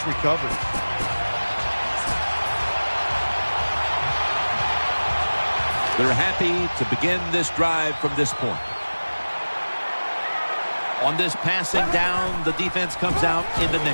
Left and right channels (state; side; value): inverted; both; correlation -1.00